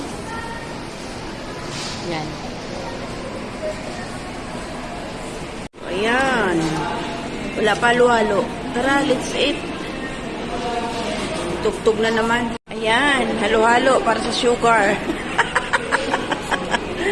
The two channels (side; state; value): both; identical; correlation 1.00